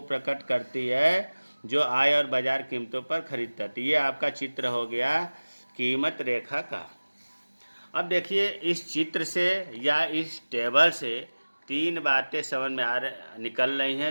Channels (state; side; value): inverted; both; correlation -1.00